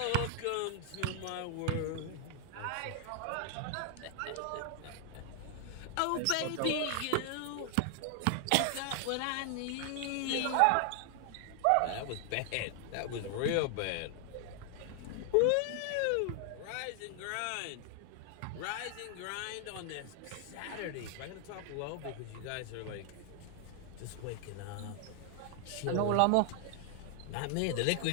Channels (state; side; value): different; both; correlation 0.00